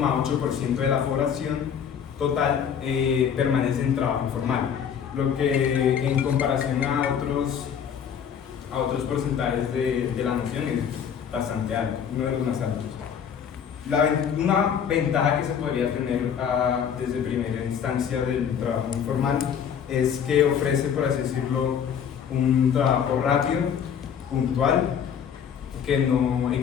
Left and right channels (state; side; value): quieter; right; 8.0 dB